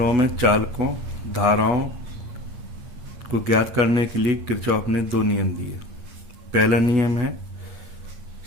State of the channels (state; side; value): late; left; 8.2 ms